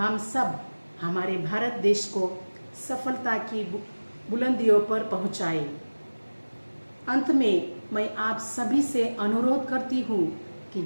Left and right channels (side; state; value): both; inverted; correlation -1.00